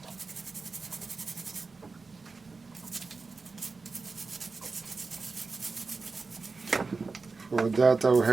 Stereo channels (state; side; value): quieter; left; 4.2 dB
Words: For that I'll